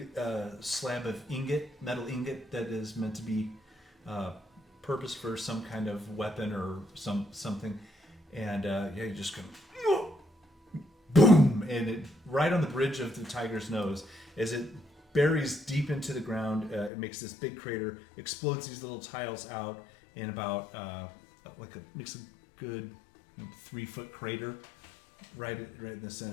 slab of metal ingot that is meant to be purposed for some kind of weapon or something. And you just go boom, and it right on the bridge of the tiger's nose as it buries deep into the ground. It makes this big crater, explodes these little tiles out in about makes a good 3-foot crater right in the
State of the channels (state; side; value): drops out; right; at 16.9 s